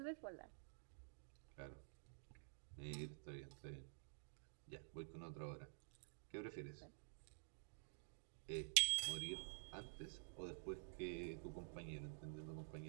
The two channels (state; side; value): silent; left; digital silence